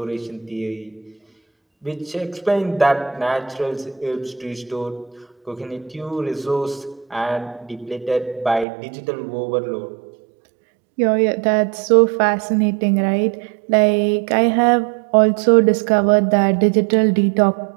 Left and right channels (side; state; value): left; drops out; at 8.7 s